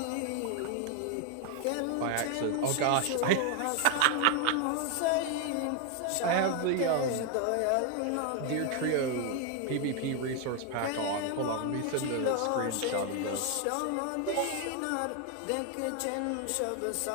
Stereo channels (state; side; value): different; both; correlation 0.01